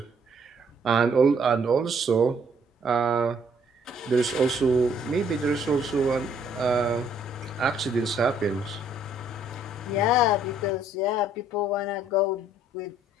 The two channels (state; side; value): normal; both; correlation 0.64